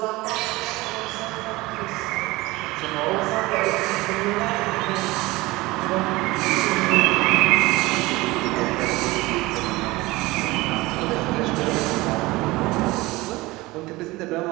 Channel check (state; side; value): quieter; left; 20.8 dB